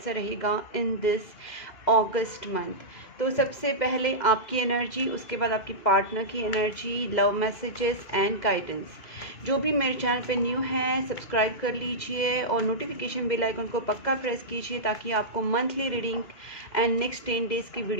रहेगा इन दिस अगस्त मंथ। तो सबसे पहले आपकी एनर्जी, उसके बाद आपकी पार्टनर की energy, love messages and guidance. जो भी मेरे चैनल पे न्यू है सब्सक्राइब कर लीजिए और नोटिफिकेशन बेल आइकन को पक्का प्रेस कीजिए ताकि आपको monthly reading and next 10 days की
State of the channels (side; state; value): right; late; 2.0 ms